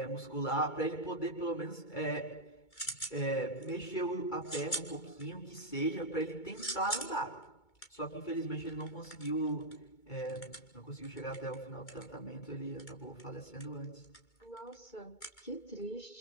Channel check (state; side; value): late; right; 2.2 ms